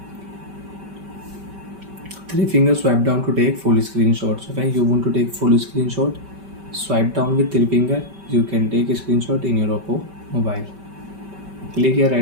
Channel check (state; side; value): late; left; 5.2 ms